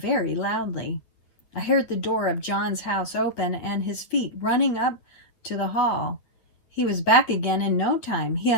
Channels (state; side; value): late; right; 9.1 ms